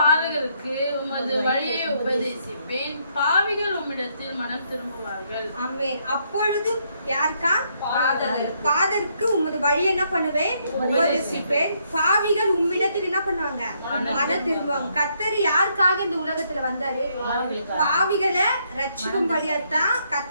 உமது வழியை உபதேசிப்பேன், பாவிகள் உம்மிடத்தில் மனம் திரும்புவார்கள். ஆமென். அப்பொழுது யாருக்கா, பாதருக்கு உமது வழியை என்ன பண்ணுவேன், உபதேசிப்பேன், பாவிகள் உம்மிடத்தில் என்ன பண்ணுவாங்க, மனம் திரும்புவாங்க. கர்த்தர் யாருக்காக இந்த உலகத்துல வந்தாரு, பாவிகளை ரட்சிக்கும்படியாத்தான்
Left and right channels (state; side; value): inverted; both; correlation -0.73